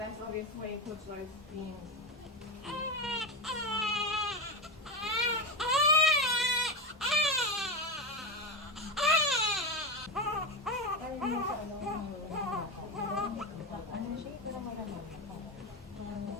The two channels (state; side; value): normal; both; correlation 0.15